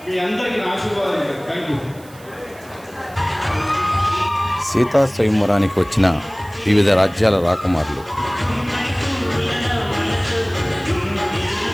మీ అందరికీ ఆశీర్వాదాలు. Thank you. సీతా స్వయంవరానికి వచ్చిన వివిధ రాజ్యాల రాకుమారులు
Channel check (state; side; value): noise; right; hiss, 24 dB below the sound